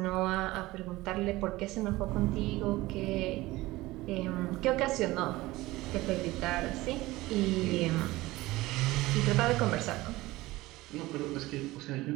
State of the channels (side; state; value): left; quieter; 19.0 dB